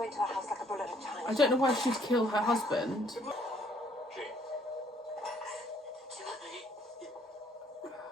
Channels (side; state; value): both; normal; correlation 0.64